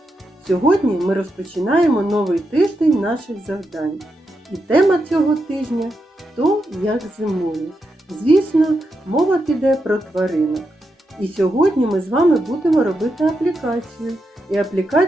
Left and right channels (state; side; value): normal; both; correlation 0.85